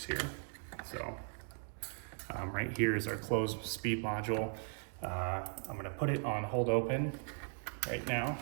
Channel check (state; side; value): silent; left; 52 dB below the other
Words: here. So right here is our close speed module. I'm gonna put it on hold open right now.